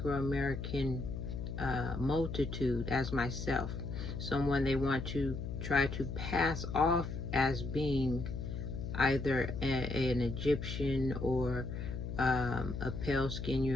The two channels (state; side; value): noise; left; hum, 5 dB below the sound